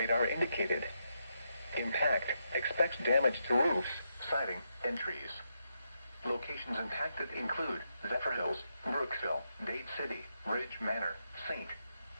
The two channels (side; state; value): both; inverted; correlation -0.82